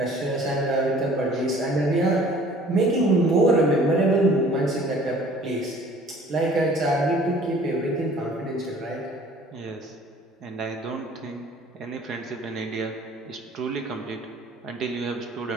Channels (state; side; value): normal; both; correlation 0.52